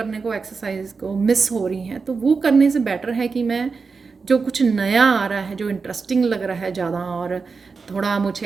को, एक्सरसाइज को मिस हो रही हैं, तो वो करने से बेटर है कि मैं जो कुछ नया आ रहा है, जो इंटरेस्टिंग लग रहा है ज़्यादा, और थोड़ा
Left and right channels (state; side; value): quieter; left; 4.8 dB